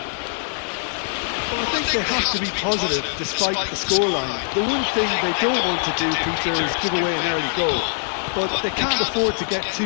Well, I think they have to be positive despite the scoreline. The one thing they don't want to do, Peter, is give away an early goal. But they can't afford to get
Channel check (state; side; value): silent; right; 60 dB below the other